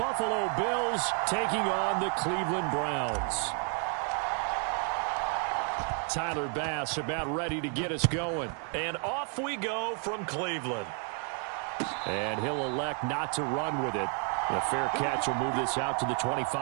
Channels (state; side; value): quieter; left; 39.0 dB